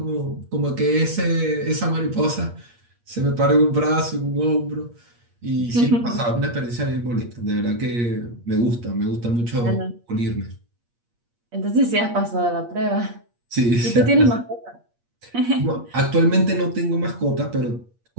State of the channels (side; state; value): left; late; 8.5 ms